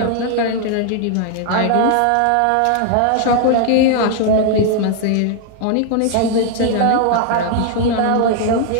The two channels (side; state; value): both; different; correlation 0.00